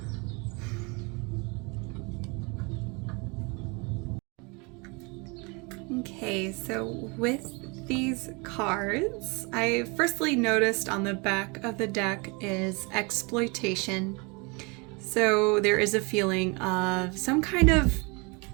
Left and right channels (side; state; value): left; quieter; 29.5 dB